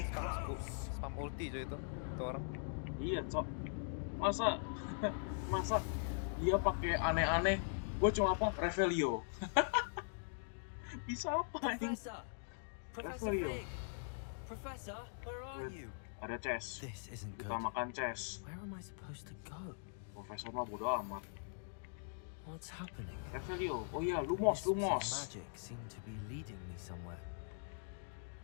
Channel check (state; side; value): silent; right; digital silence